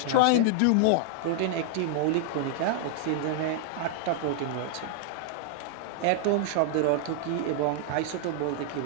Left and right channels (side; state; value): both; different; correlation -0.01